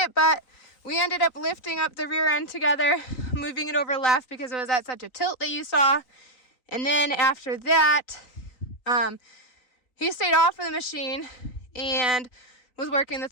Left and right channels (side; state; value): right; late; 4.0 ms